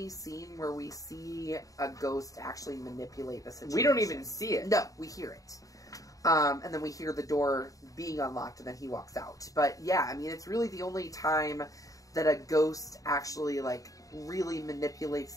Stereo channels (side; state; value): right; late; 0.17 ms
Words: scene where we see a ghost actually manipulate the situation. We don't even see it. No, we hear it. And then we hear the door being unlocked, and then he walks out. But yeah, I mean, it's really the only time that a ghost actually, like, really manipulates